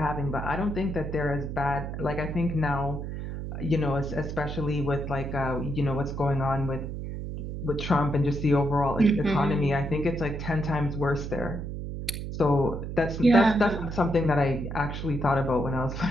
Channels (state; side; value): noise; right; hum, 6 dB below the sound